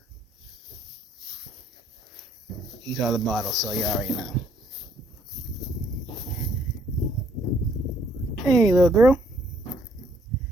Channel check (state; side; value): normal; both; correlation 0.66